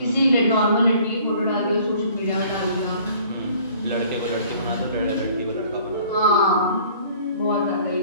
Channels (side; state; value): both; inverted; correlation -0.53